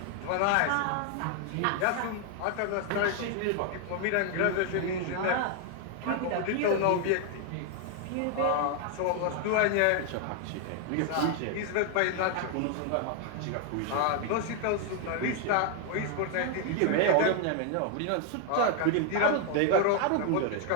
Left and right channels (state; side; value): different; both; correlation 0.00